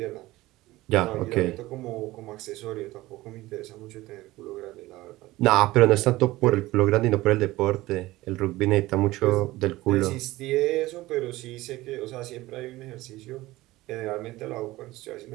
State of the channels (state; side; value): quieter; left; 18.3 dB